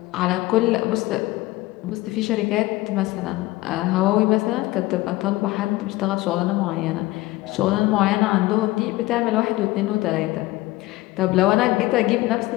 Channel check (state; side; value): quieter; right; 18.9 dB